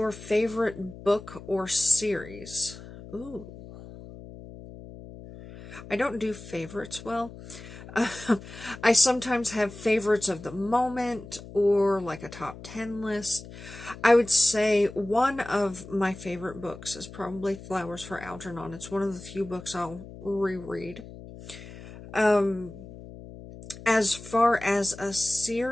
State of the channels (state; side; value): noise; left; hum, 15 dB below the sound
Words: favorite book or series? Ooh. I don't do favorites well. I sometimes have favorites of the moment or like a top 10 list. I would say one of my favorite books is probably Flowers for Algernon. It's one of the few books I'll reread. As far as a